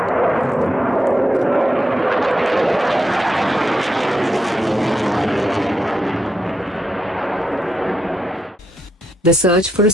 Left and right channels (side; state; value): both; normal; correlation 0.83